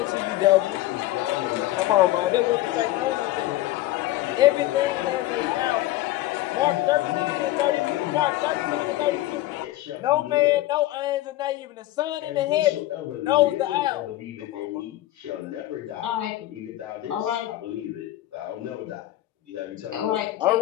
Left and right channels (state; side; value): quieter; right; 15.8 dB